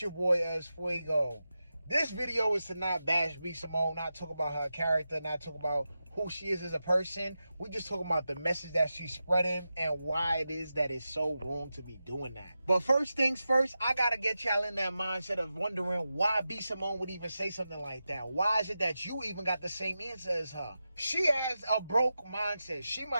your boy Fuego. This video is to not bash B.Simone, not talk about her character, not talk about who she is as a person. We just talking about the message that she's spreading and why it is that it's so wrong to be doing that. But first things first, I gotta get y'all in that mindset of wondering why B.Simone would even say something like that. Why is it that you even got the same answer as her? She has a broke mindset. She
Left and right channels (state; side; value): inverted; both; correlation -0.91